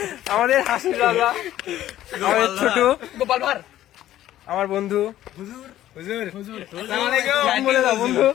হাসির রাজা, আমাদের ছোট গোপাল ভার, আমার বন্ধু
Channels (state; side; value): quieter; right; 13.2 dB